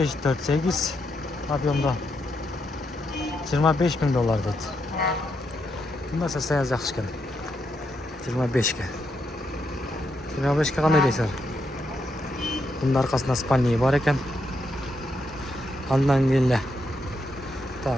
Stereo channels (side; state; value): both; normal; correlation 0.80